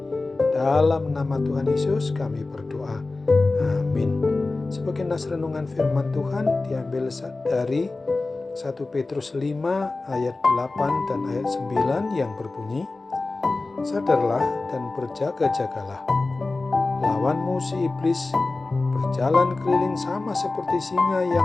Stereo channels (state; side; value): quieter; right; 3.4 dB